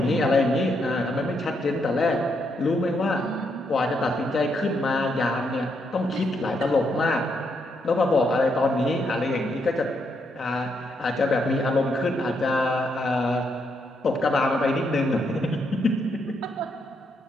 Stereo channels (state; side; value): normal; both; correlation 0.77